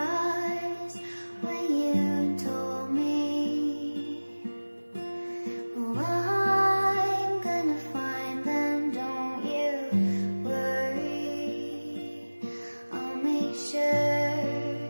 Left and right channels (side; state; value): both; inverted; correlation -1.00